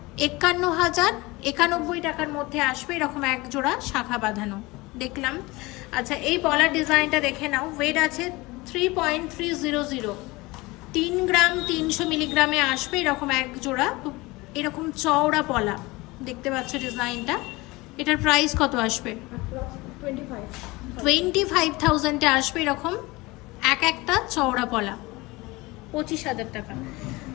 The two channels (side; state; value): right; quieter; 22.3 dB